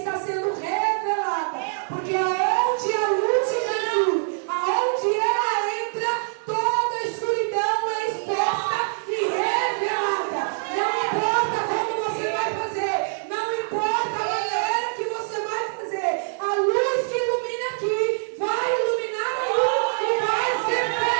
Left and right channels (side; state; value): left; silent; digital silence